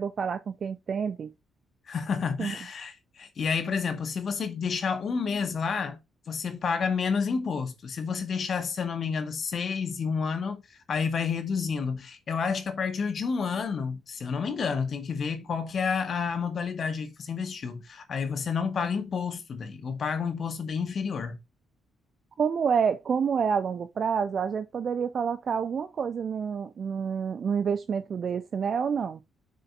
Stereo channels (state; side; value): normal; both; correlation 0.76